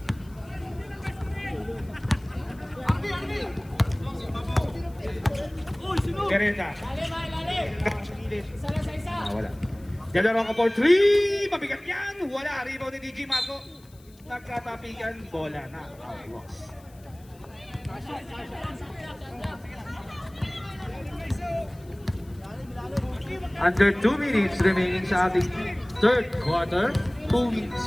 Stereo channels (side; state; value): left; noise; hiss, 28 dB below the sound